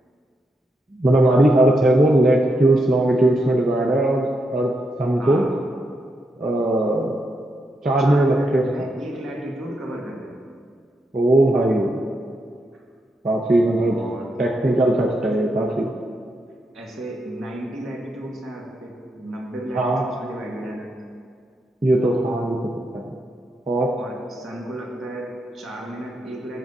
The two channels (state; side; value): normal; both; correlation 0.82